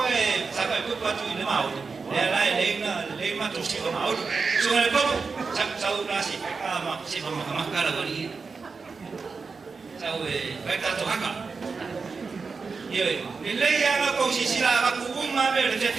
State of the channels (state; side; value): quieter; left; 4.7 dB